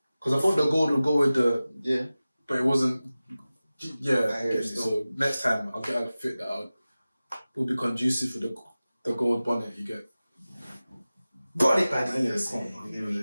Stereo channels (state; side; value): inverted; both; correlation -0.97